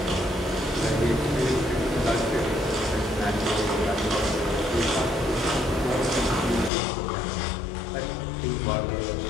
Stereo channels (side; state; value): right; drops out; at 6.7 s